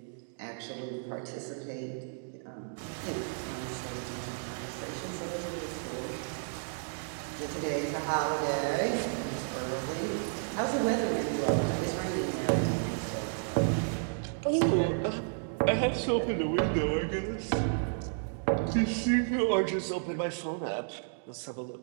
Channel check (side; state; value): left; silent; digital silence